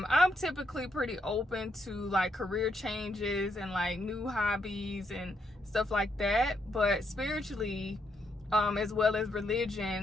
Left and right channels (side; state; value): both; normal; correlation 0.77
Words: typically pretty open to like career changes and like new hobbies and stuff like that. But spiritually, as well as